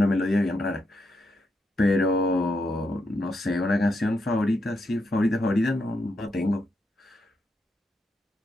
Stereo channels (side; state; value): both; normal; correlation 0.82